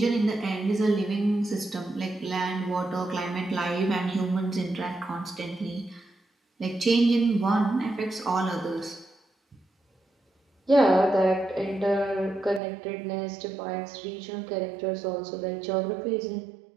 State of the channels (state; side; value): drops out; left; at 12.6 s